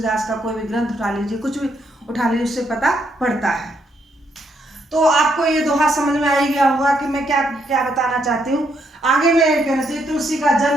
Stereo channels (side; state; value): both; normal; correlation 0.75